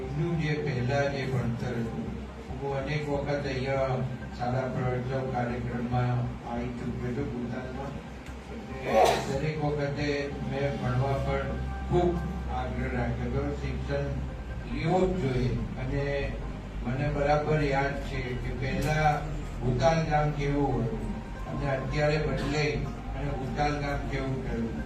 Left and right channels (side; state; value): both; identical; correlation 1.00